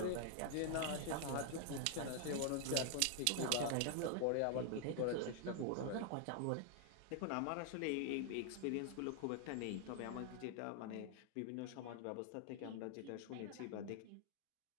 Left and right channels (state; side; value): different; both; correlation 0.00